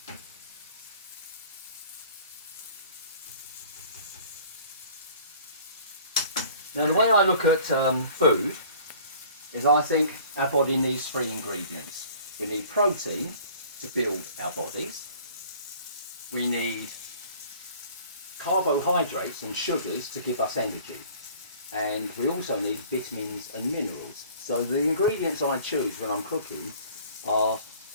Now, the way I look at food is I think our body needs 3 ingredients. We need protein to build our bodies. We need carbohydrates and sugars to give us energy. And we also need vitamins and minerals. So the ingredients I choose when I'm cooking are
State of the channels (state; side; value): inverted; both; correlation -0.50